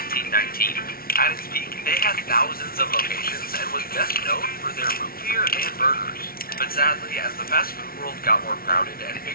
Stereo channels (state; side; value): late; right; 0.43 ms